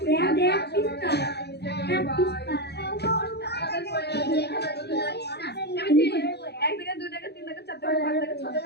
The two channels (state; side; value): late; right; 0.48 ms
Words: এক টাকা 2 টাকা 3 টাকা 4 টাকা 5 টাকা 6